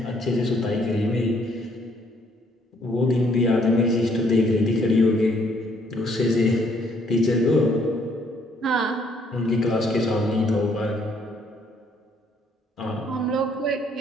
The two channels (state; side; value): normal; both; correlation 0.66